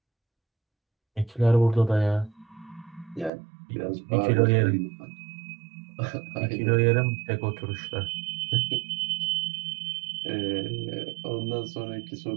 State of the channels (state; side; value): drops out; left; at 3.3 s